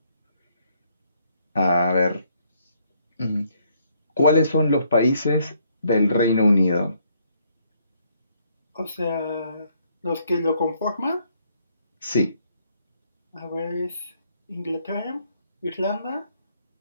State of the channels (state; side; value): inverted; both; correlation -0.70